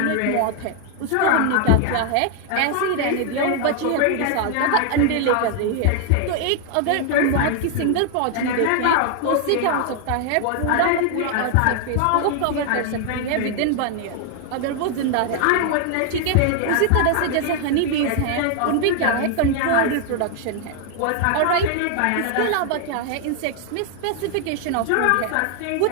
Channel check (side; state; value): both; different; correlation 0.00